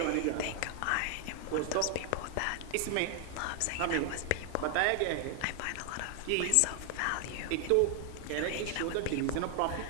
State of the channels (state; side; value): different; both; correlation 0.00